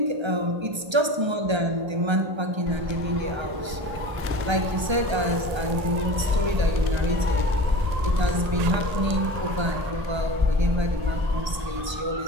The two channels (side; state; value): left; late; 1.3 ms